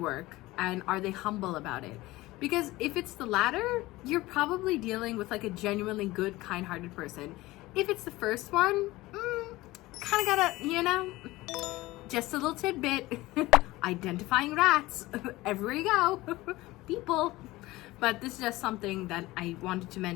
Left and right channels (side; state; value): right; quieter; 19.0 dB